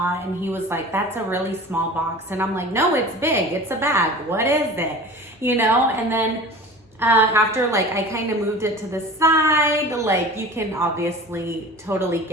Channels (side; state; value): both; normal; correlation 0.38